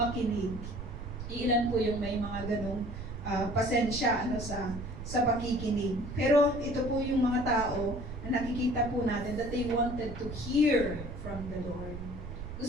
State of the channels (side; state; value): right; noise; rumble, 9 dB below the sound